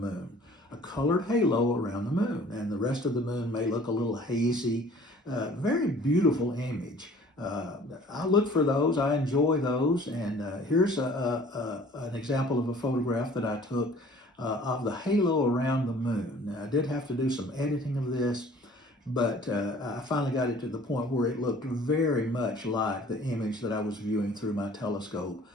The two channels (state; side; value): normal; both; correlation 0.51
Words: a colored halo around the moon, and the rest of the moon may look a little hazy. Very beautiful image. I look for those, I enjoy those, and here's an example of a photograph that I took of the halo around the moon. Now, I did have to do some editing of this, but I finally got it to the point where it looked very much like the image that I was viewing through my telescope